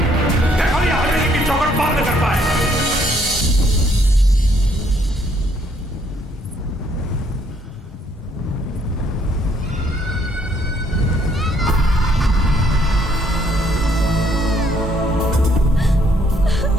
देखो ये हवेली की चौखट पार न कर पाए।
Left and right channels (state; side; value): normal; both; correlation 0.68